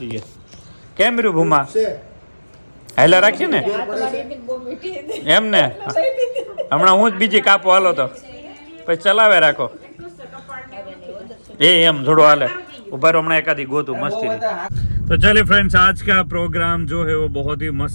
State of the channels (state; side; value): inverted; both; correlation -1.00